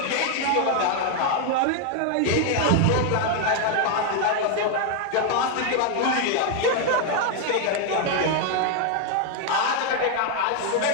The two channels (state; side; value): different; both; correlation 0.00